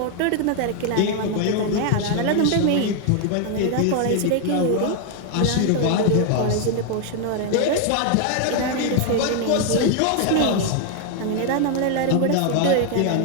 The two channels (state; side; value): different; both; correlation 0.00